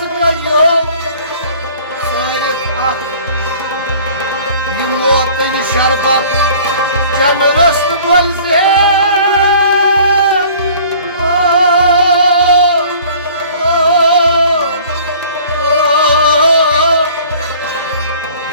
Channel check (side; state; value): both; inverted; correlation -0.49